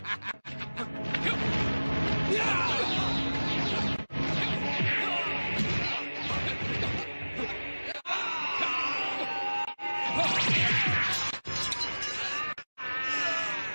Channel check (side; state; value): both; inverted; correlation -1.00